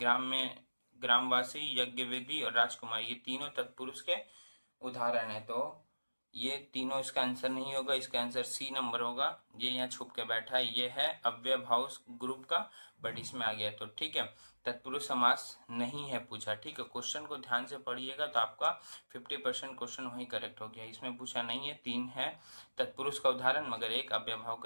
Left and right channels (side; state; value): both; inverted; correlation -1.00